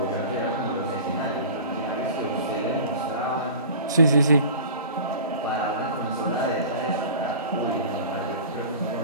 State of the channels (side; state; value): both; inverted; correlation -0.39